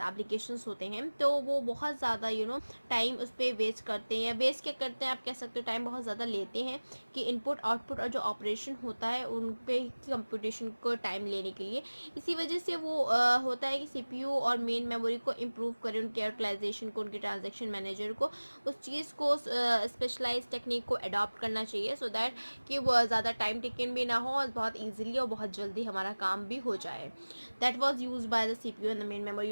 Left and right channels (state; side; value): inverted; both; correlation -1.00